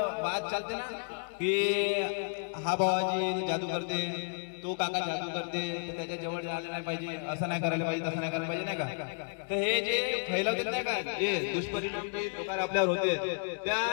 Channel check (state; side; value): silent; right; digital silence